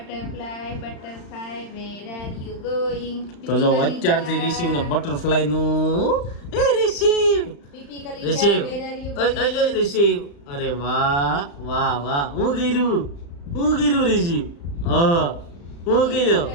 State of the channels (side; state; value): right; late; 35 ms